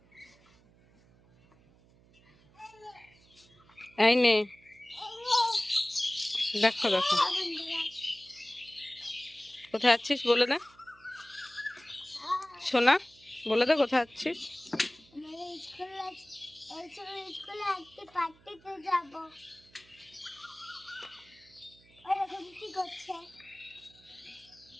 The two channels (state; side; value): noise; right; hum, 28 dB below the sound